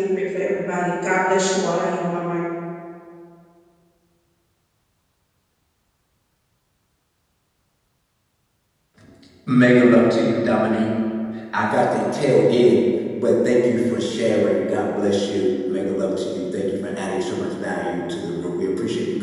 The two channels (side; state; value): both; identical; correlation 1.00